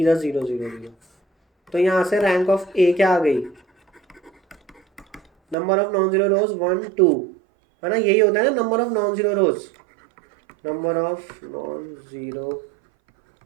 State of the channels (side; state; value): left; drops out; at 5.6 s